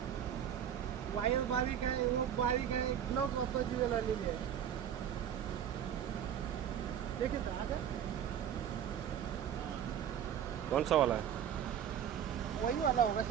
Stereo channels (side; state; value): left; quieter; 9.3 dB